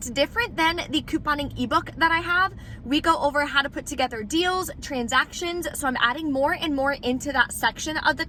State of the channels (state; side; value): identical; both; correlation 1.00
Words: different than the couponing ebook that I have. We go over how to put together deals, transactions, so I'm adding more and more into that section of the